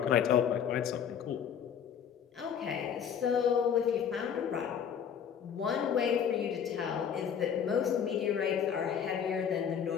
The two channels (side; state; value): right; quieter; 8.0 dB